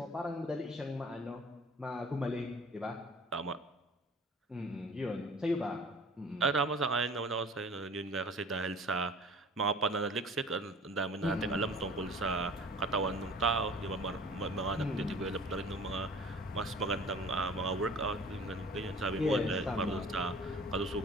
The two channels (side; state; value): both; normal; correlation 0.46